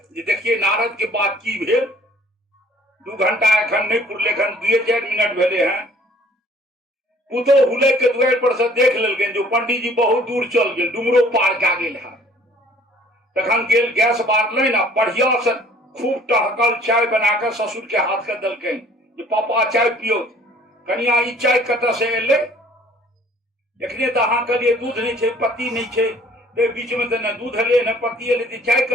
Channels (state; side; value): normal; both; correlation 0.55